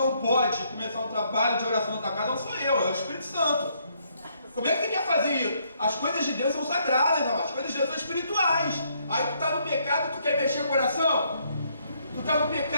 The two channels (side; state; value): both; inverted; correlation -0.71